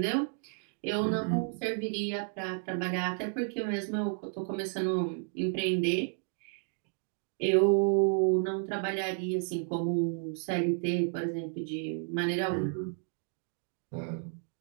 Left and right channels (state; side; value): silent; left; 56 dB below the other